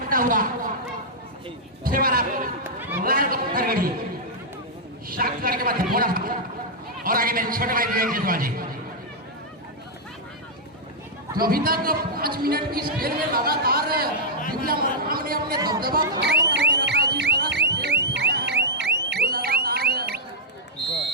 हुआ पत्थरगढ़ी शांत करके बाद थोड़ा और आगे मेरे छोटे भाई विवेक जायसवाल जी तो अभी तक 5 मिनट की इस खेल में लगातार दिव्या मरकाम ने अपने दबदबा कायम करके रखा है। जिस तरह से खेल दिखाया है वो लगातार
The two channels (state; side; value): normal; both; correlation -0.08